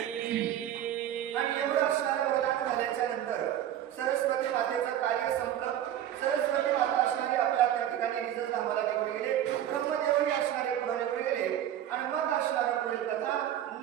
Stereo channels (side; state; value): left; quieter; 11.3 dB